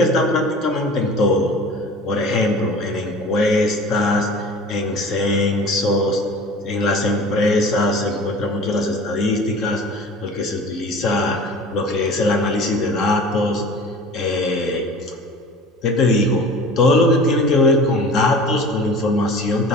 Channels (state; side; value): normal; both; correlation 0.41